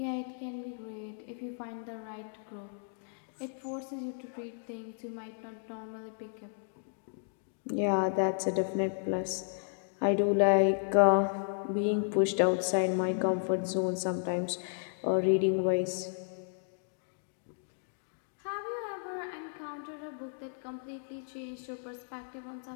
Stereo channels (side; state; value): right; silent; digital silence